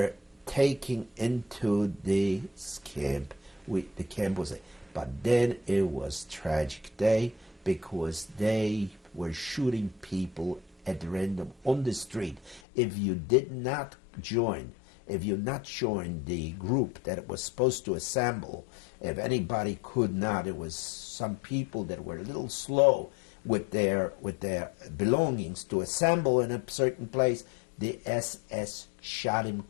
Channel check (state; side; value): drops out; right; at 12.6 s